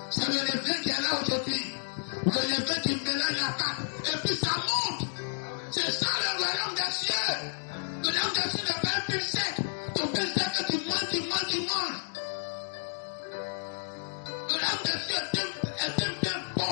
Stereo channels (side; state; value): right; silent; digital silence